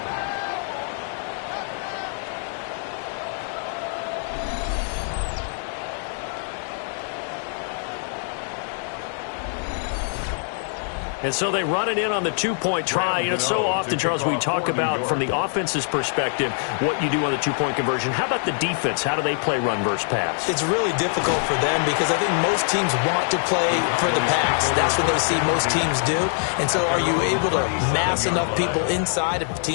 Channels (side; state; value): right; silent; 63 dB below the other